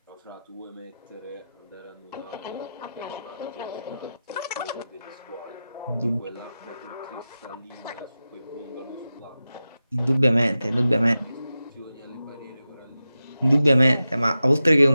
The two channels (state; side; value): inverted; both; correlation -0.93